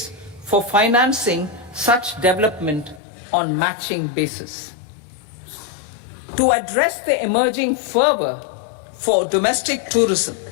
for financing such development on matching basis. To address the emerging fervor for domestic tourism,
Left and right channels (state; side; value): drops out; right; at 3.0 s